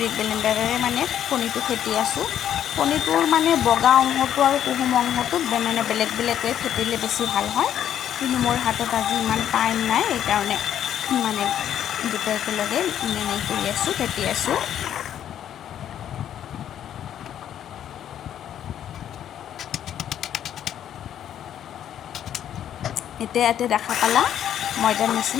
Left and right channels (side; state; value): right; quieter; 10.3 dB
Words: ব্লেণ্ডাৰেৰে মানে কণীটো ফেটি আছোঁ। কণীটোৰ মানে বগা অংশটো আৰু কুহুম অংশটো মানে বেলেগ বেলেগকৈ ফেটিলে বেছি ভাল হয়, কিন্তু মোৰ হাতত আজি ইমান টাইম নাই, সেইকাৰণে মানে দুটা একেলগে মানে কৰি আছোঁ, ফেটি আছোঁ। এতিয়া ইয়াতে দেখা পালা ময়দাৰ